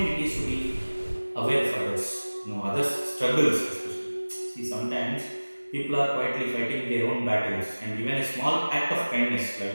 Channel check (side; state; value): both; inverted; correlation -1.00